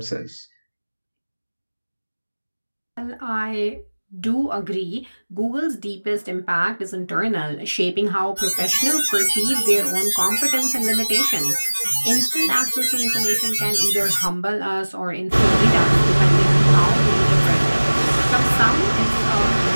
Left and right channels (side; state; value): both; inverted; correlation -1.00